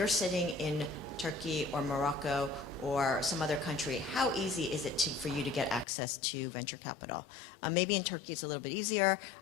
sitting in Turkey or Morocco or some other country, how easy is it for you to get access to venture capital? Maybe in Turkey it's a little bit easier,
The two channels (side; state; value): right; drops out; at 5.9 s